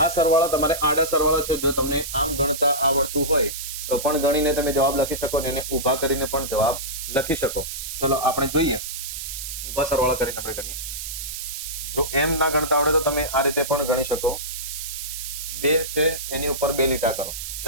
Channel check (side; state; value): right; noise; hiss, 7 dB below the sound